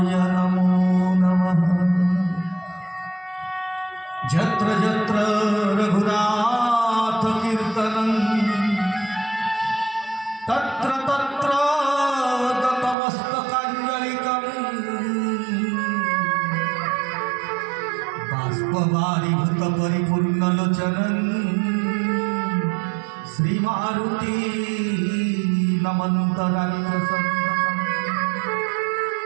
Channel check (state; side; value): drops out; left; at 13.0 s